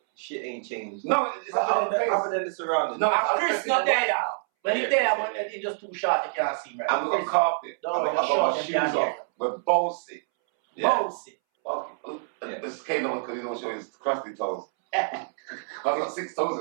shit ain't changed. No, it's other than the surroundings. No, Chris not there now. When he's there, when he's just too short, you can't see him. Right? And we got carpet. No, I got my shoes off. We're bossy. Bossy. This came on because he don't show his crusty toes. I've got 6 toes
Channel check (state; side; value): silent; left; 60 dB below the other